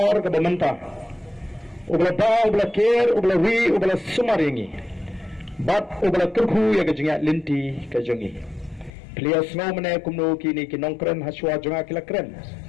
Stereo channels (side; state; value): right; drops out; at 8.9 s